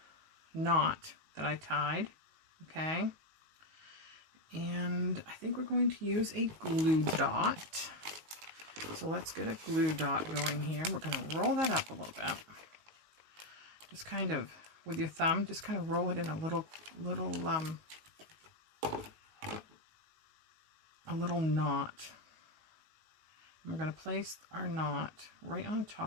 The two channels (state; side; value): late; left; 19 ms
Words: knot that I tied, okay? And I think we're going to use a glue dot. So let's get a glue dot going here. We're going to roll that up a little bit. Just kind of with your thumb, just kind of roll it in a little knot. And we're going to place our knot right on